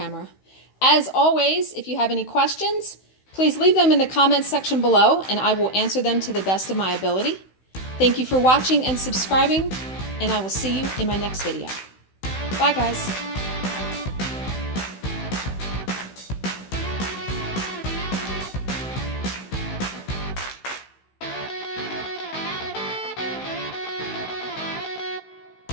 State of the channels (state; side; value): late; right; 16 ms